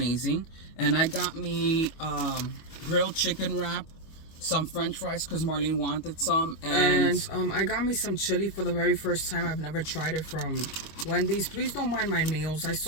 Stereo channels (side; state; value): right; late; 25 ms